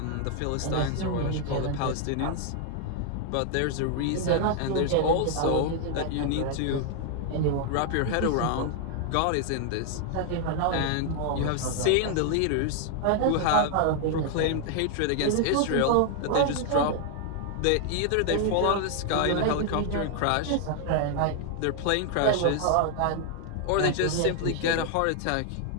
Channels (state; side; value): different; both; correlation 0.00